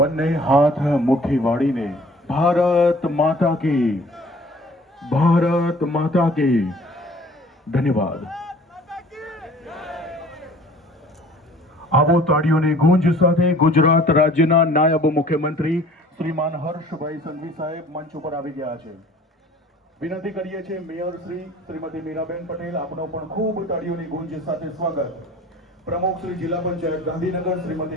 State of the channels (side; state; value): both; normal; correlation 0.50